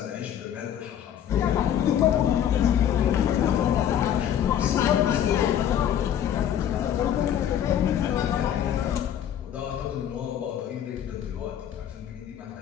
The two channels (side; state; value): right; quieter; 10.0 dB